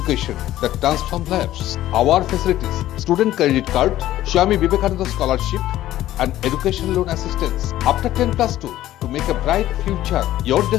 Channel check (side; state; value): right; quieter; 14.0 dB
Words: that transforms lives. Our facilities, student credit card, Swami Vivekananda scholarship, and education loan assistance after 10+2 to make a bright future. Your